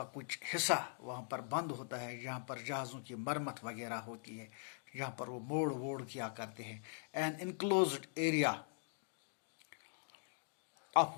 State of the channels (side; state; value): right; silent; digital silence